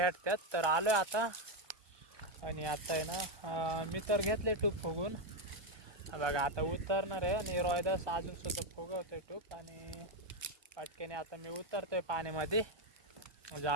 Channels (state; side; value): late; left; 1.2 ms